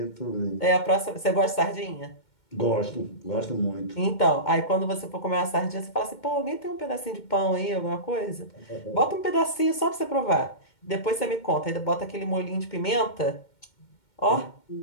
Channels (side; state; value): right; late; 2.2 ms